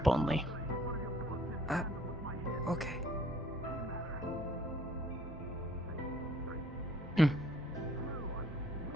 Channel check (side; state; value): both; normal; correlation 0.59